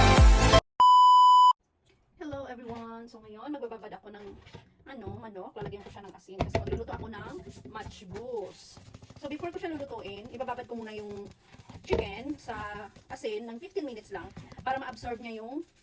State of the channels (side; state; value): both; identical; correlation 1.00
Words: Hello everyone! So ngayon, magbababad ako ng manok. Lalagyan ko siya ng asin kasi magluluto ako ng matchboos. So before ko siya lulutuin, ibababad ko muna yung chicken sa asin ng 15 minutes lang para ma-absorb niya yung